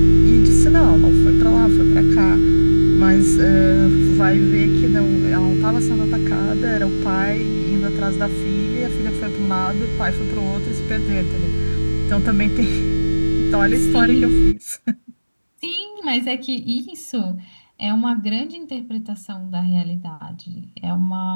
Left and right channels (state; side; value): inverted; both; correlation -1.00